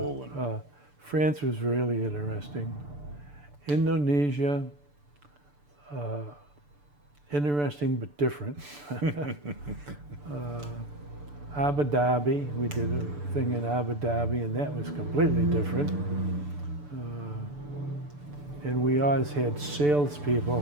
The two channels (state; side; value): late; left; 6.8 ms